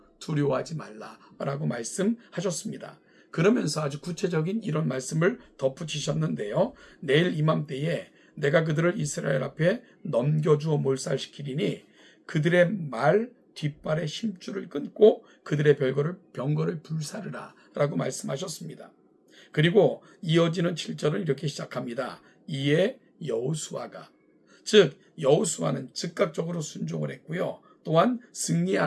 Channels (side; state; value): both; identical; correlation 1.00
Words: 두려워하지 말라라고 말씀하셨습니다. 그러면서 아주 구체적인 이런 말씀을 덧붙이셨는데요. 내일 이맘때에 내가 그들을 이스라엘 앞에 넘겨주어 몰살시키리니 그들의 말 뒷발의 힘줄을 끊고 그들의 병거를 불사르라 라고 말씀하셨습니다. 그리고 이어지는 7절은 이렇게 시작합니다. 이에 여호수아가, 즉 여호수아는 즉각적으로 순종을 했고요. 또한